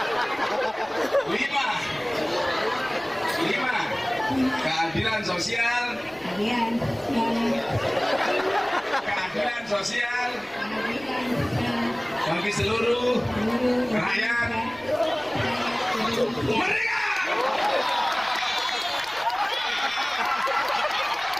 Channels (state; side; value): noise; left; rumble, 28 dB below the sound